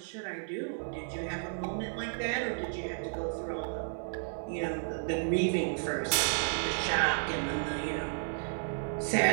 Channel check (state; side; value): silent; left; 56 dB below the other